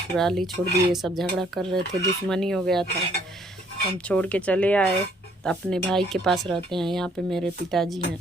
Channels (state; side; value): normal; both; correlation 0.64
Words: ही छोड़ दिए। सब झगड़ा कर रहे थे, दुश्मनी हो गया था, हम छोड़ के चले आए। तो अपने भाई के पास रहते हैं। यहाँ पे मेरे पिताजी हैं,